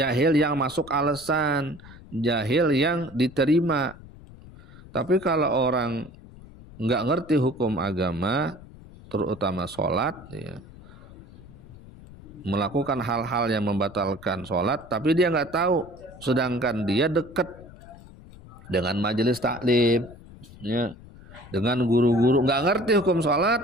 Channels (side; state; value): left; noise; rumble, 19 dB below the sound